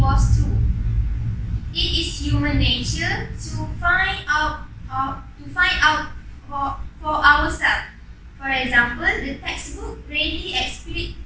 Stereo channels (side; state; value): both; identical; correlation 1.00